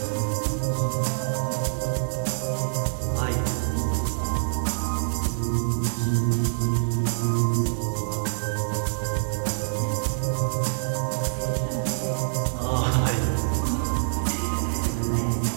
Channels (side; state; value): left; silent; digital silence